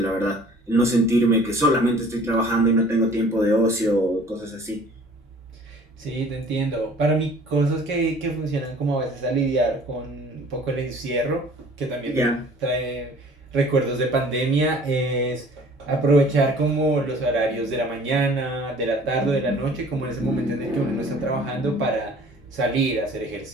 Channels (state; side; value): normal; both; correlation 0.50